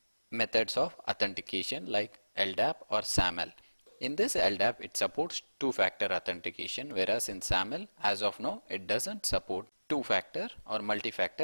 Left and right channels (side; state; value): both; inverted; correlation -1.00